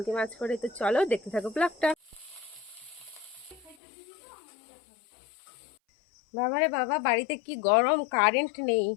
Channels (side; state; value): right; drops out; at 3.8 s